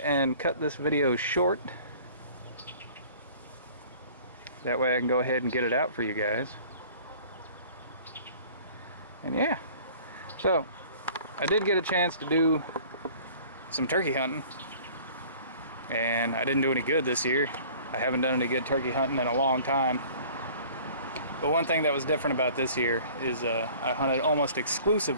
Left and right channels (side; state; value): both; inverted; correlation -0.49